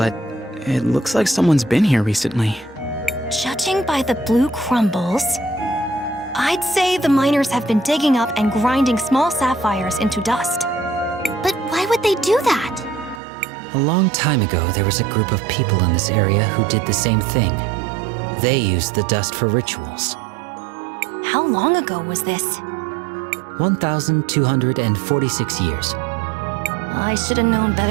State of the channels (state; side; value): drops out; left; at 13.2 s